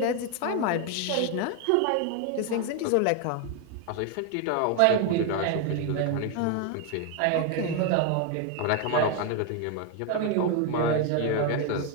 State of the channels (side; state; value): both; different; correlation 0.01